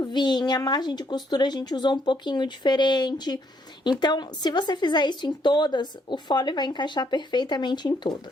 a margem de costura a gente usou um pouquinho diferente. Então, se você fizer isso em todas, o fole vai encaixar perfeitamente em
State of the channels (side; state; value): both; normal; correlation 0.71